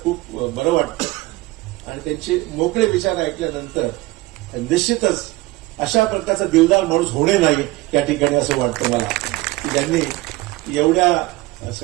खूप बरं वाटतं आणि त्यांचे मोकळे विचार ऐकल्यानंतर निश्चितच अशा प्रकारचा दिलदार माणूस होणे नाही या ठिकाणी असं वाटतं मला, की ज्यांनी एवढ्या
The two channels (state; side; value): quieter; left; 20.0 dB